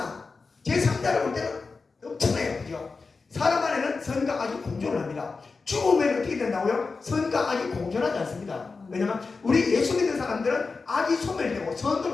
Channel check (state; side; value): quieter; right; 4.3 dB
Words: 제 3자를 볼 때는 엄청나요. 그죠? 사람 안에는 선과 악이 공존을 합니다. 죽으면 어떻게 된다고요? 선과 악이 공존하지 않습니다. 왜냐면 우리 예수 믿는 사람들은 악이 소멸되고